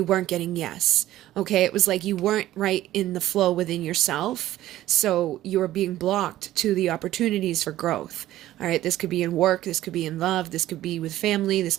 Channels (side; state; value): left; quieter; 14.4 dB